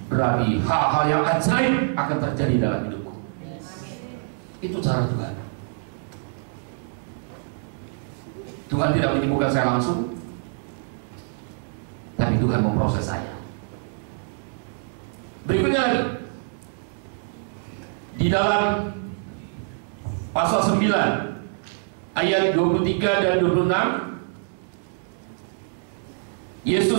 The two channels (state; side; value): silent; left; digital silence